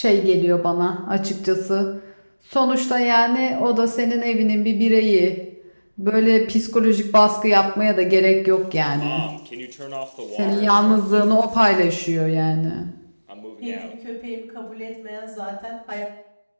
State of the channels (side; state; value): both; inverted; correlation -1.00